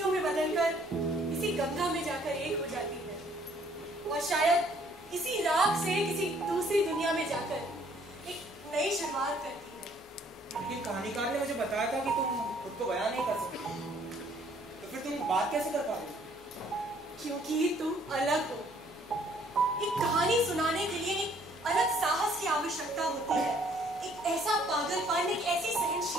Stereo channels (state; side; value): normal; both; correlation 0.62